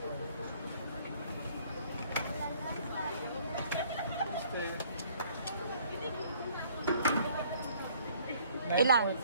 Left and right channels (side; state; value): both; inverted; correlation -0.59